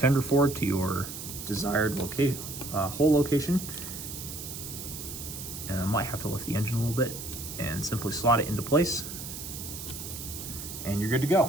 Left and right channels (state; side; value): noise; right; hiss, 9 dB below the sound